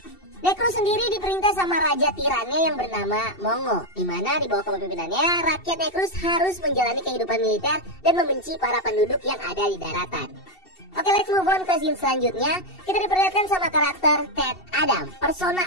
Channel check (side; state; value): right; late; 2.7 ms